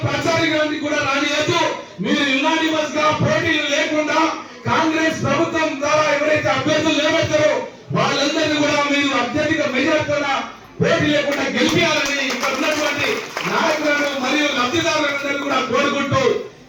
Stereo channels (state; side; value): identical; both; correlation 1.00